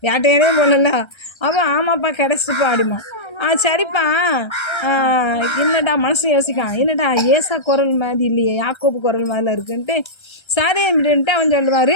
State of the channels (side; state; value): right; late; 1.3 ms